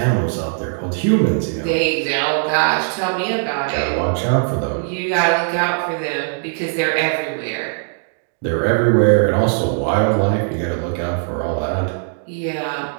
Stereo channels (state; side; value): silent; left; digital silence